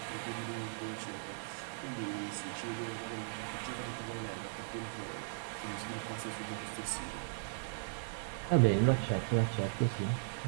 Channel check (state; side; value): silent; left; digital silence